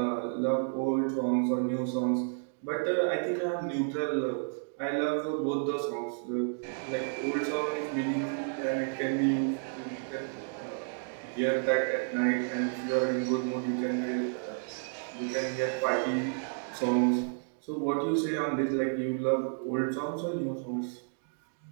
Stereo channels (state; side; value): silent; left; digital silence